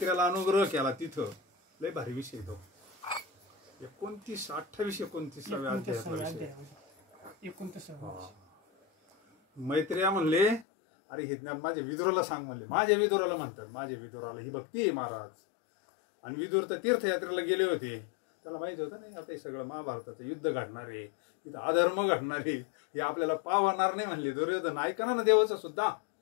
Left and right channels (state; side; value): drops out; right; at 10.7 s